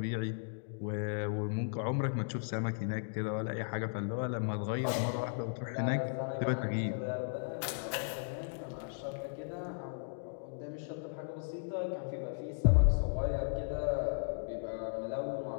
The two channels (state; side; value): silent; right; digital silence